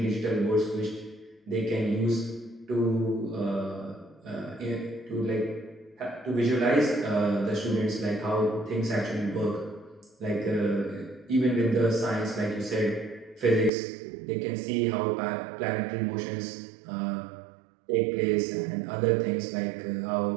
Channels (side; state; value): left; drops out; at 13.7 s